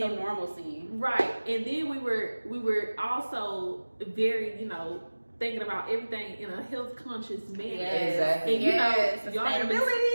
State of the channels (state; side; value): inverted; both; correlation -1.00